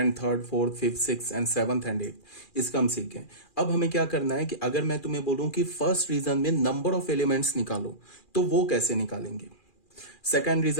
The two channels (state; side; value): late; right; 2.4 ms